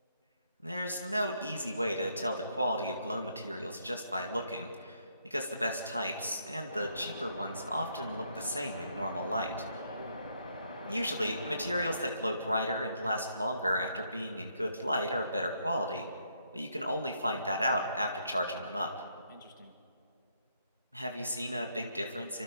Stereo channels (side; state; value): both; inverted; correlation -0.72